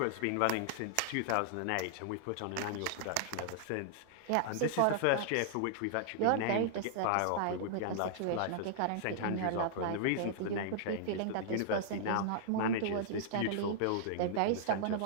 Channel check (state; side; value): different; both; correlation -0.01